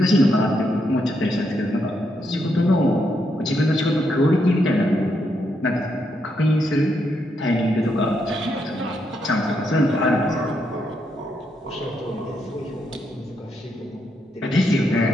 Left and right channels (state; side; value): normal; both; correlation 0.79